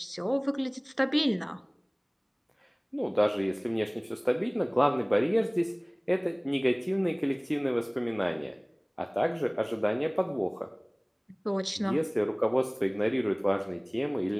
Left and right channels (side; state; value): both; identical; correlation 1.00